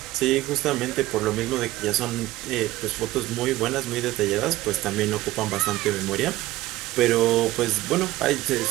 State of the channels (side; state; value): left; quieter; 16.9 dB